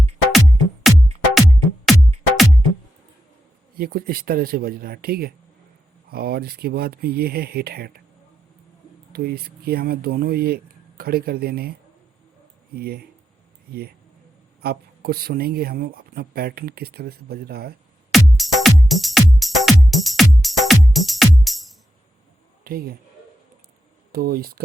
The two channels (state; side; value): normal; both; correlation 0.85